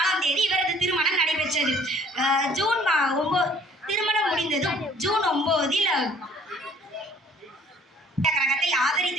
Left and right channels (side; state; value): both; normal; correlation 0.56